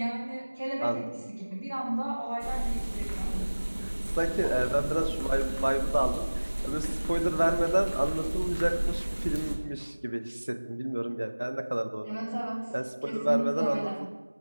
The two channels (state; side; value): inverted; both; correlation -1.00